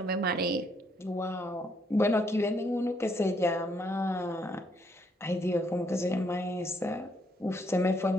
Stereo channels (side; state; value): both; normal; correlation 0.71